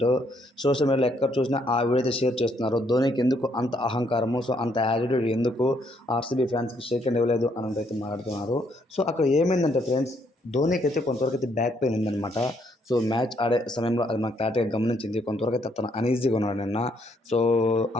సోషల్ మీడియాలో ఎక్కడ చూసినా ఆ వీడియో అయితే షేర్ చేస్తున్నారు. ధోనికి ఎందుకు అంత అహంకారము, సో అంత యాటిట్యూడ్ ఎందుకు ఆర్సీబీ ఫ్యాన్స్కి షేక్ హ్యాండ్ ఇవ్వలేదు అని అయితే మాట్లాడుతున్నారు. సో అక్కడ ఏమైందంటే ఫ్రెండ్స్, ధోనికి అయితే కొంతవరకు అయితే బ్యాక్ పెయిన్ ఉందన్నమాట. సో మ్యాచ్ ఆడే సమయంలో అది మనకు క్లారిటీగా గమనించింది. కొంతవరకు అయితే తను అనీజీగా ఉన్నాడు నిన్న. సో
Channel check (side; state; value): both; normal; correlation 0.71